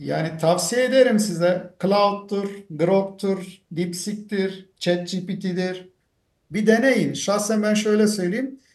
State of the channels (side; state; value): both; identical; correlation 1.00